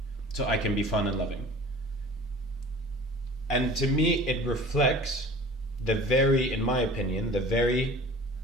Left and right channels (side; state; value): both; normal; correlation 0.42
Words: So I can be fun and loving. And to me, it reflects in my opinion,